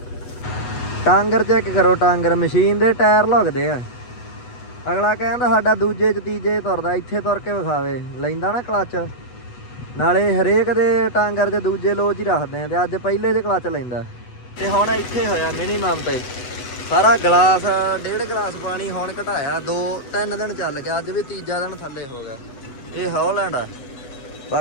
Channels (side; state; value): right; late; 8.1 ms